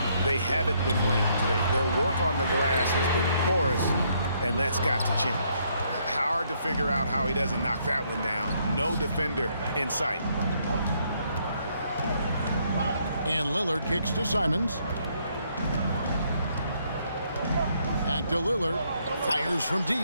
they haven't been winning today. Their work on the glass has been porous, and that's got to change. Hard to figure out how he doesn't knock that one down. No defender in sight. And Lillard kicks to Simons. Back to Lillard. Fires from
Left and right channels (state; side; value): inverted; both; correlation -0.71